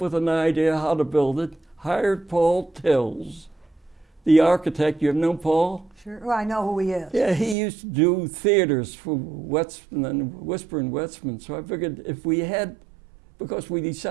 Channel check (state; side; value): drops out; left; at 7.6 s